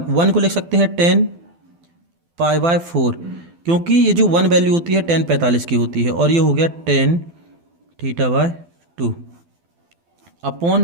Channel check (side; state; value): left; late; 12 ms